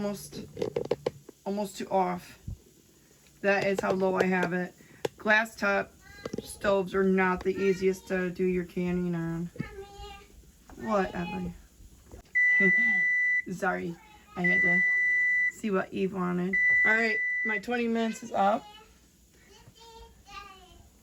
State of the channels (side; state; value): both; identical; correlation 1.00